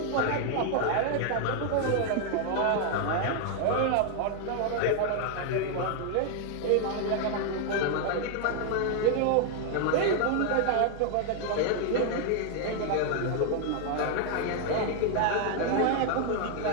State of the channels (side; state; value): both; different; correlation 0.00